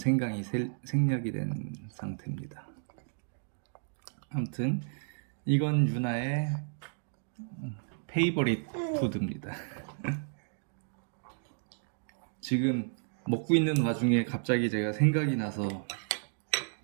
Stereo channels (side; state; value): left; silent; digital silence